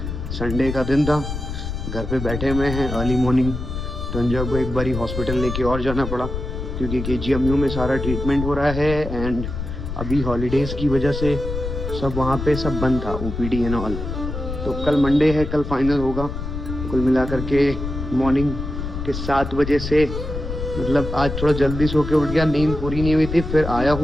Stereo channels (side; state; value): left; noise; rumble, 6 dB below the sound